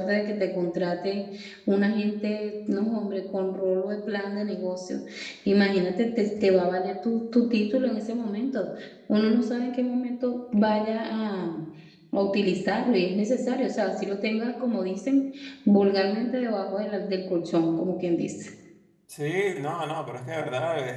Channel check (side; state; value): both; identical; correlation 1.00